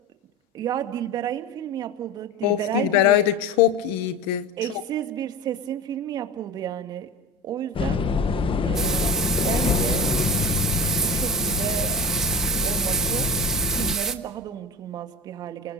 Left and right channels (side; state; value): both; normal; correlation 0.29